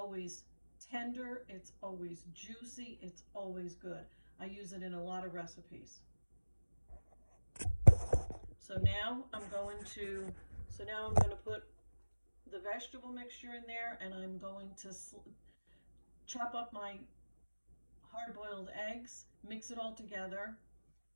tender, it's always juicy, it's always good. I use it in a lot of recipes. So now I'm going to put the vegetable mixture in there, and I'm going to chop up my hard-boiled eggs, mix it all together,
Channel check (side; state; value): both; inverted; correlation -1.00